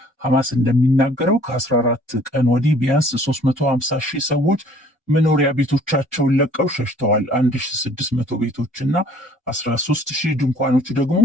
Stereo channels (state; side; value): normal; both; correlation 0.56